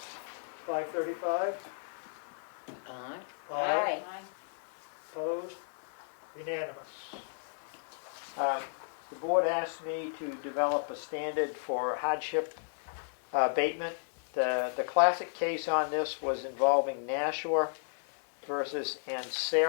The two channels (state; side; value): silent; right; digital silence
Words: 535? Aye. Aye. Opposed? Unanimous. The board asked me to develop a standard for hardship abatement. The classic case on this was involving Nashua versus